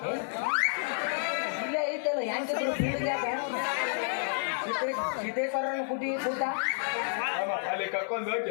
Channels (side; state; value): right; silent; 58 dB below the other